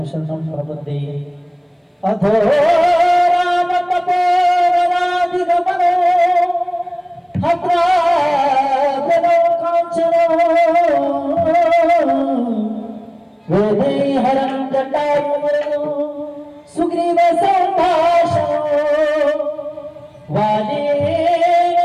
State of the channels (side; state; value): both; identical; correlation 1.00